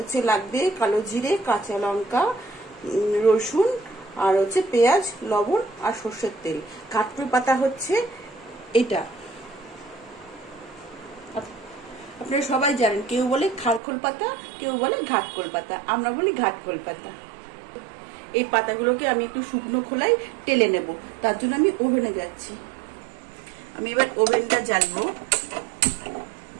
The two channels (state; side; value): drops out; left; at 13.8 s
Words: লাগবে কালো জিরে, কাঁচা লঙ্কা, রসুন, আর হচ্ছে পেঁয়াজ, লবণ আর সর্ষের তেল। ঘাটকোল পাতা হচ্ছে এটা, আপনারা সবাই জানেন। কেউ বলে খারখোল পাতা, কেউ বলে ঘাটকোল পাতা, আমরা বলি ঘাটকোল পাতা। এই পাতাগুলোকে আমি একটু শুকনো খোলায় টেলে নেব, তার জন্য আমি ওভেনে যাচ্ছি। আমি এবার ওভেনটা জ্বালবো,